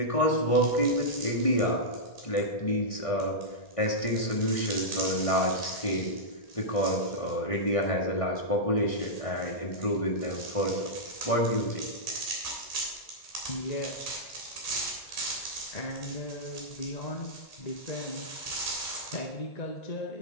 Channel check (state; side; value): late; right; 1.6 ms